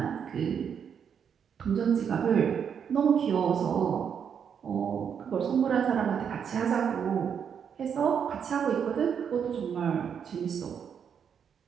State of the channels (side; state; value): left; quieter; 7.6 dB